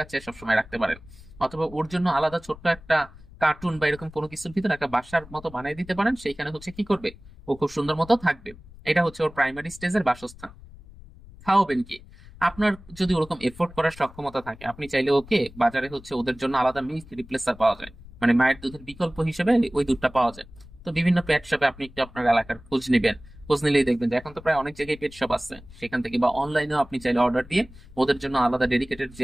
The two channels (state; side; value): noise; left; rumble, 20 dB below the sound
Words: সবসময় রাখতে পারেন। অথবা ওর জন্য আলাদা ছোট্ট একটা কার্টুন বা এরকম কোনো কিছুর ভিতরে একটা বাসার মতো বানিয়ে দিতে পারেন। সেইখানে হচ্ছে কি করবে, ও খুব সুন্দর মতো থাকবে। এটা হচ্ছে ওর প্রাইমারি স্টেজের বাসস্থান। খাওয়াবেন কি, আপনার যদি ওরকম এফোর্ড করার সক্ষমতা থাকে, আপনি চাইলে ওকে বাজারে হচ্ছে ওদের জন্য আলাদা মিল্ক রিপ্লেসার পাওয়া যায়, মানে মায়ের দুধের বিকল্প হিসেবে ওই দুধটা পাওয়া যায়। তো বিভিন্ন পেট শপে আপনি একটু আপনার এলাকার খোঁজ নেবেন। খোঁজ নিলেই দেখবেন যে এখন তো প্রায় অনেক জায়গায় পেট শপ আছে, সেখান থেকে বা অনলাইনেও আপনি চাইলে অর্ডার দিয়ে ওদের জন্য আলাদা ডেডিকেটেড